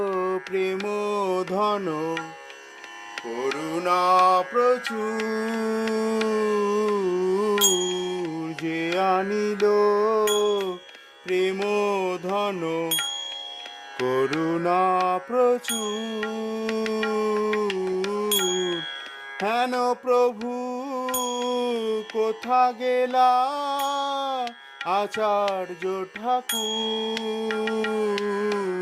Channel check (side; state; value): both; identical; correlation 1.00